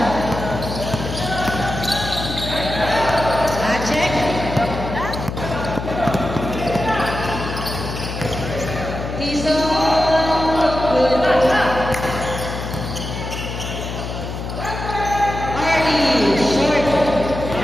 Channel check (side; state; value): left; noise; hum, 6 dB below the sound